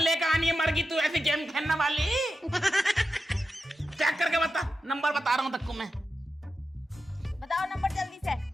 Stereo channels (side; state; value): both; normal; correlation 0.90